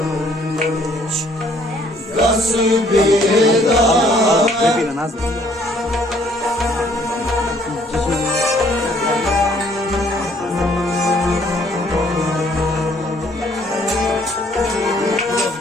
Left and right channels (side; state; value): both; normal; correlation 0.62